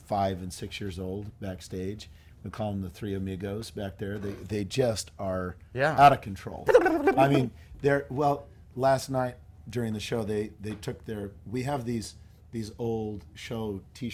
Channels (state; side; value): identical; both; correlation 1.00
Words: and 6 years old backstage. We call them the 3 amigos back there. They just are out of control. I mean, last night during the show, they took we have these old show